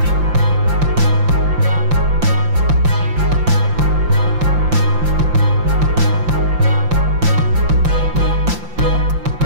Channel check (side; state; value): left; late; 5.8 ms